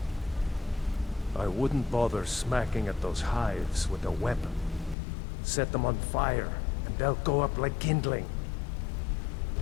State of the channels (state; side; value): drops out; right; at 5.0 s